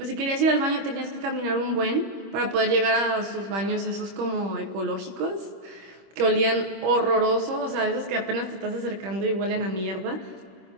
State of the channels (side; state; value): left; late; 26 ms